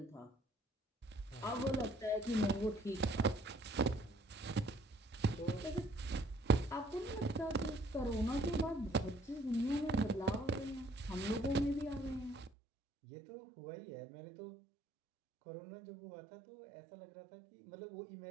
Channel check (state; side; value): drops out; left; at 12.5 s